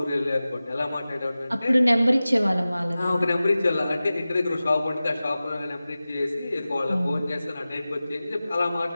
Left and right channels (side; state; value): both; inverted; correlation -0.96